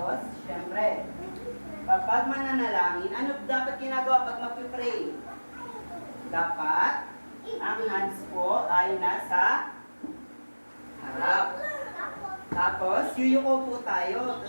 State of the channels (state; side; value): inverted; both; correlation -1.00